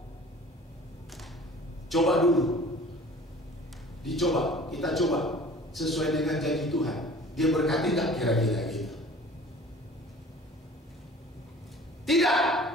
Coba dulu. Dicoba, kita coba sesuai dengan janji Tuhan. Dia berkati tak kira-kira gitu? Tidak.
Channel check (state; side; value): normal; both; correlation 0.47